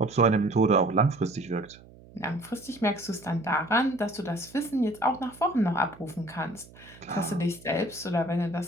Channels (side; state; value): right; noise; hum, 22 dB below the sound